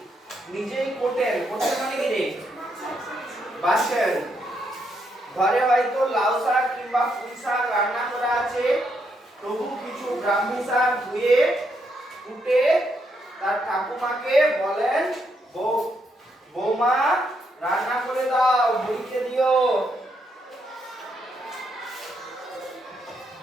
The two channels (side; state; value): both; normal; correlation 0.77